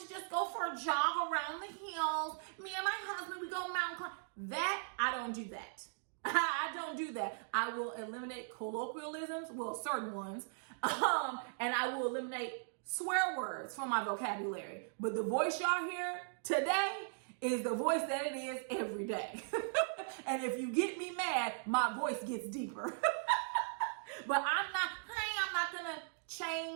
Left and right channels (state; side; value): silent; left; digital silence